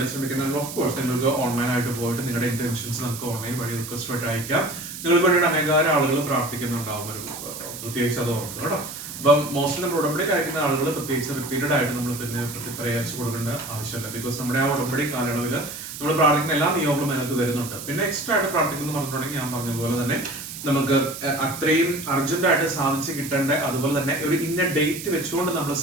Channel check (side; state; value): right; noise; hiss, 10 dB below the sound